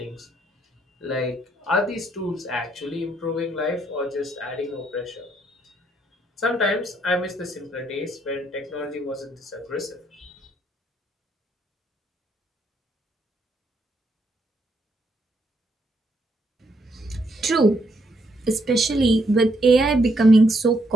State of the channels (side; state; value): both; normal; correlation 0.74